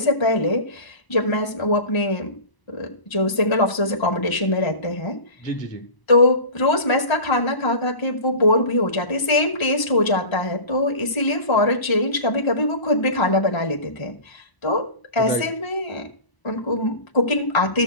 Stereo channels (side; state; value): right; late; 1.0 ms